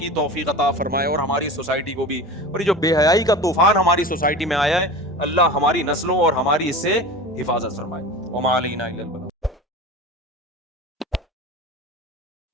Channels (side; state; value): both; normal; correlation 0.33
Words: तौफीक अता फरमाए और हमारी सोसाइटी को भी। और ये जो बेहयाई का तूफान हमारी सोसाइटी में आया है, अल्लाह हमारी नस्लों और हमारी इससे हिफाजत फरमाए। वमा अलैना इल्लल बलाग।